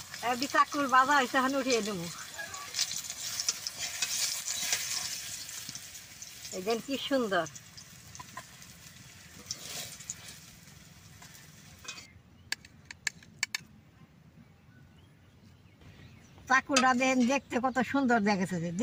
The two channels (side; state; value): both; identical; correlation 1.00